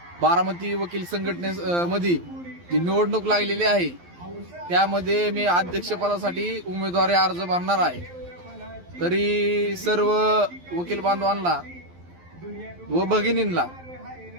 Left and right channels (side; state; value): left; late; 11 ms